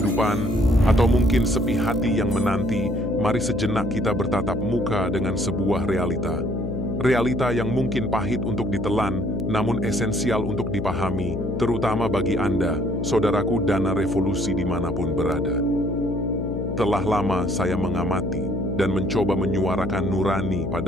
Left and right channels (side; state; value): left; noise; hum, 3 dB below the sound